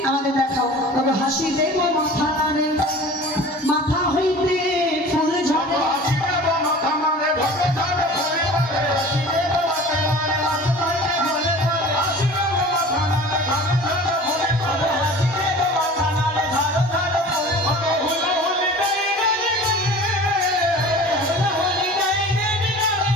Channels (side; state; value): both; normal; correlation 0.41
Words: আমাদের দেখাও। তবে হাসি দেব মাথা নাড়ে, মাথা হইতে ফুল ঝরে,